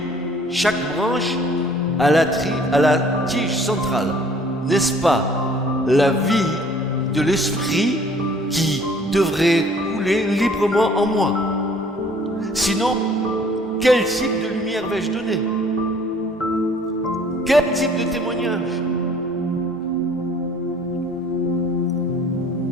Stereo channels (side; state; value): both; normal; correlation 0.55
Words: chaque branche à la tige centrale. N'est-ce pas la vie de l'esprit qui devrait couler librement en moi? Sinon, quel type de lumière vais-je donner? Quel type de témoignage?